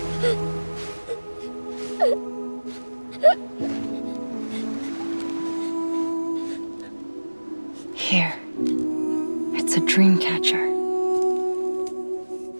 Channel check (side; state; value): both; inverted; correlation -1.00